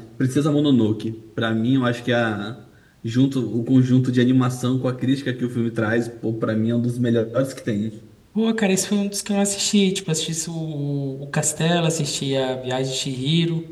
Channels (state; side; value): identical; both; correlation 1.00